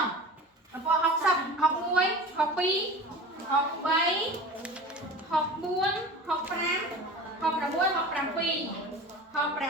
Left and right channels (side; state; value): both; normal; correlation 0.36